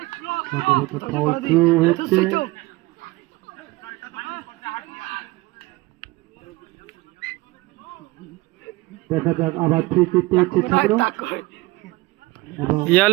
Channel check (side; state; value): left; quieter; 20.8 dB